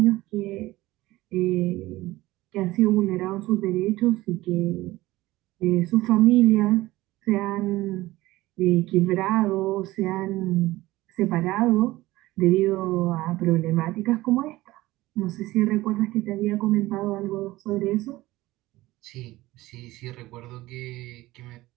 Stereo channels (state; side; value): quieter; left; 18.1 dB